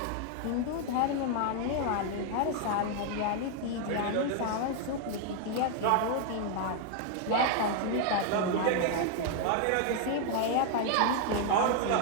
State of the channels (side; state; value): both; different; correlation 0.00